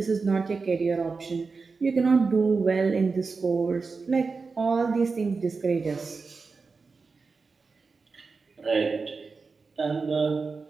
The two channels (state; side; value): quieter; left; 4.5 dB